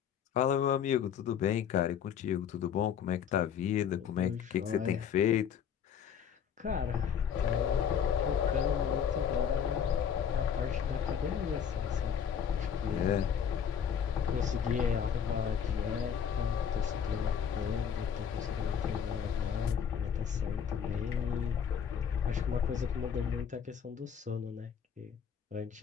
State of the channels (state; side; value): quieter; right; 7.8 dB